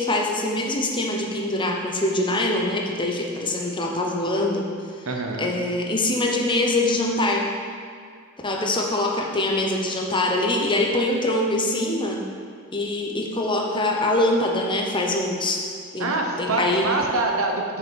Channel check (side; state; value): both; normal; correlation 0.22